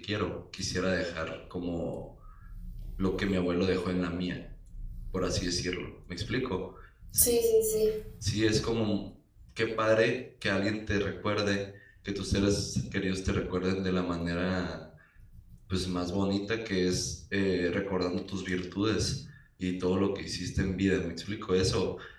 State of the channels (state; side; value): identical; both; correlation 1.00